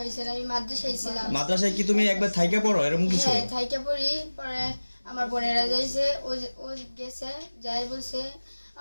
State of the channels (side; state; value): both; inverted; correlation -1.00